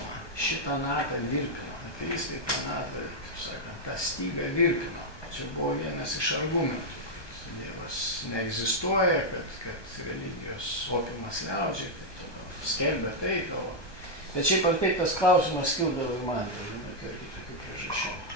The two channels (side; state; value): right; late; 1.2 ms